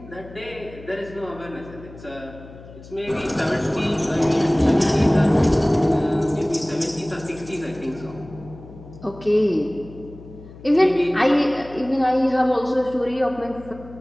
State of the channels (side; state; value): left; noise; hum, 18 dB below the sound